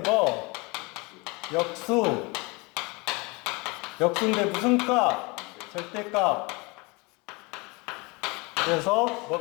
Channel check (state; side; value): quieter; right; 26.9 dB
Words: 뭐? 역수. 역수인데 무슨 값? 절대값. 그래서